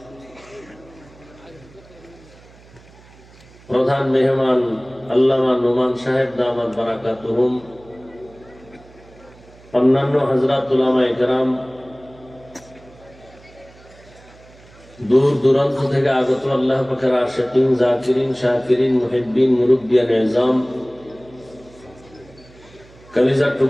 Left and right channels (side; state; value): right; noise; hum, 24 dB below the sound